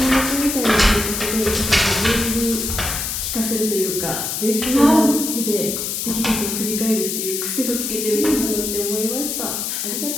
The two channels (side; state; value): left; noise; hiss, 3 dB below the sound